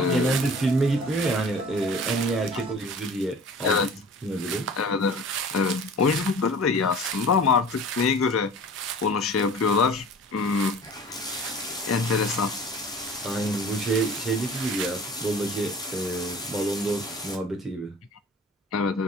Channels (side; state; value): both; normal; correlation 0.43